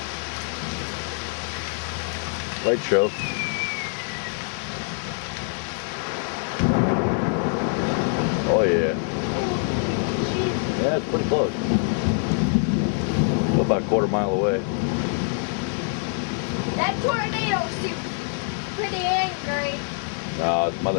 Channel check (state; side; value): silent; right; 58 dB below the other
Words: Light show. Oh yeah. Jeez. Yeah, it's pretty close. Still about a quarter mile away. That tornado seems pretty angry. Nah, it's